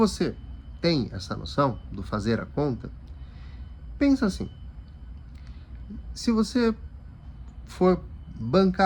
tem essa noção do fazer a conta, pensa assim, se você for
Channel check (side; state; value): both; identical; correlation 1.00